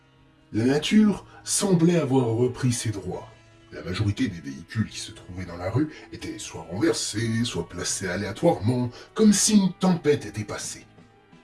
La nature semblait avoir repris ses droits. La majorité des véhicules qui se trouvaient dans la rue étaient soit renversés, soit placés aléatoirement, comme si une tempête était passée.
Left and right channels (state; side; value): identical; both; correlation 1.00